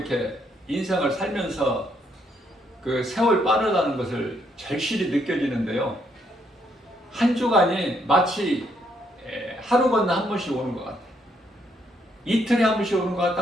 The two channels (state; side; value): normal; both; correlation 0.73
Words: 인생을 살면서 그 세월 빠르다는 것을 절실히 느껴지는데요. 한 주간이 마치 하루 건너 한 번씩 오는 것 같아요. 이틀에 한 번씩 오는 것